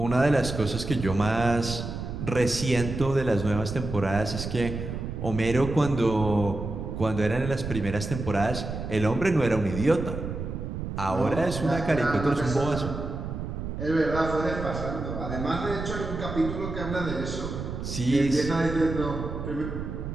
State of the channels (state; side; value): noise; right; rumble, 6 dB below the sound